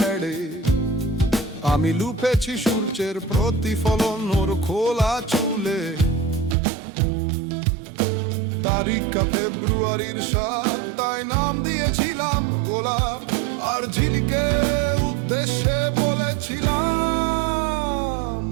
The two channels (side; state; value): left; drops out; at 6.6 s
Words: আমি লুপেছি সূর্যের প্রতিফলন ওর খোলা চুলে। তারিখটা ফেব্রুয়ারির 7, তাই নাম দিয়েছিলাম গোলাপ। আর ঝিলিকে উদ্দেশ্যে বলেছিলাম